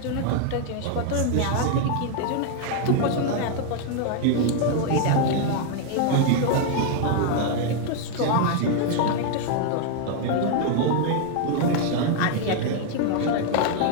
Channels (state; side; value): different; both; correlation 0.00